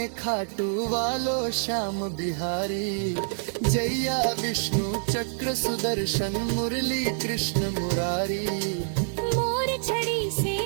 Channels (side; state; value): left; silent; 56 dB below the other